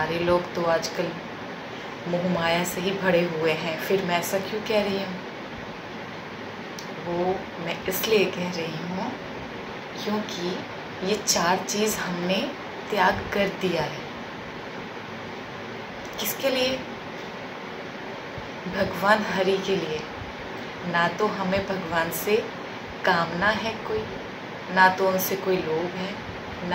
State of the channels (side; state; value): both; identical; correlation 1.00